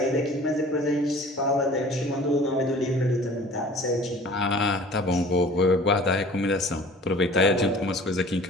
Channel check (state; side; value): normal; both; correlation 0.46